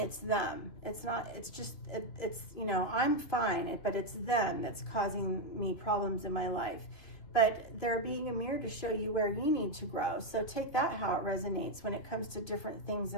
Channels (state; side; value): late; right; 3.1 ms